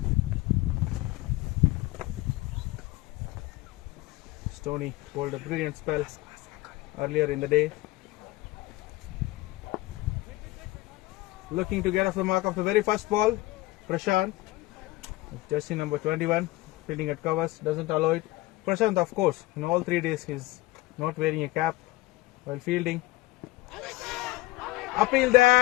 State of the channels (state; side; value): quieter; right; 19.4 dB